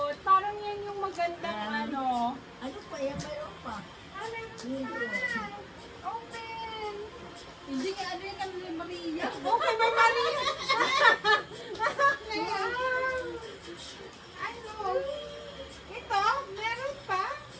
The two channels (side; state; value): both; identical; correlation 1.00